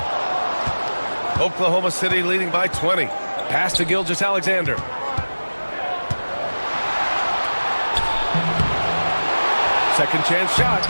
Oklahoma City leading by 20. Pass to Gilgeous-Alexander. Second chance shot.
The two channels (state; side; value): inverted; both; correlation -1.00